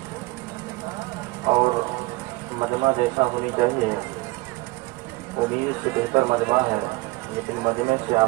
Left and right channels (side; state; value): left; quieter; 22.6 dB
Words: اور مجمع جیسا ہونی چاہیے امید سے بہتر مجمع ہے لیکن مجمع سے